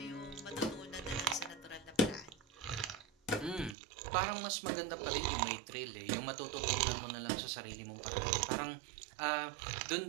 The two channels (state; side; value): drops out; left; at 3.8 s